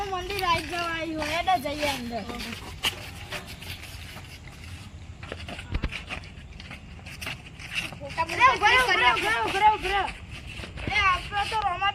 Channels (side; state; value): both; identical; correlation 1.00